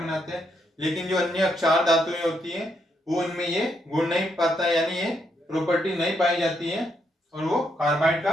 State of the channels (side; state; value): both; normal; correlation 0.77